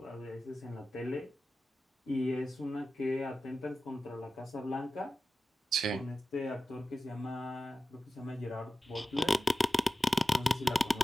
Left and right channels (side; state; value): both; normal; correlation 0.94